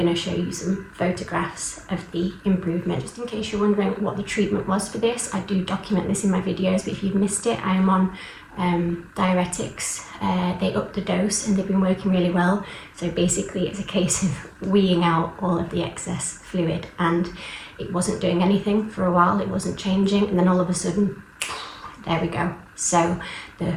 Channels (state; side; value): identical; both; correlation 1.00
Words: to show you some photographs of the improvement. Just in case you're wondering what the treatment was for this, I do document this in my videos, but if you've missed it, I am on diuretics. They upped the dose and they've been working really well. So basically it's a case of weeing out all of the excess fluid, and it wasn't doing anything for a while, it wasn't changing, and then all of a sudden, there we go. So the